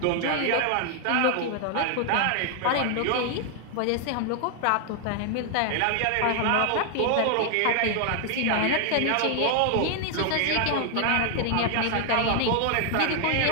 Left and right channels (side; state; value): both; different; correlation 0.00